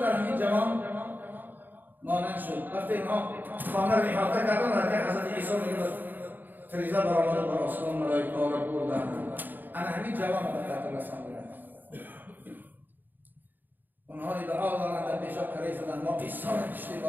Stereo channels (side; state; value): left; late; 0.089 ms